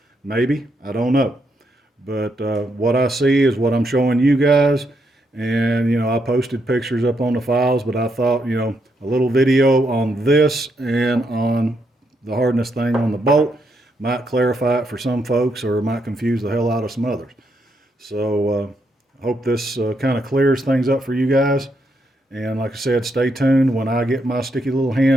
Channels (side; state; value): both; normal; correlation 0.78